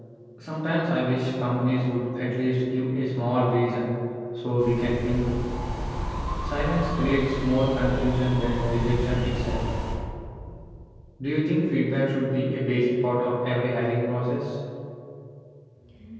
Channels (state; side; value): identical; both; correlation 1.00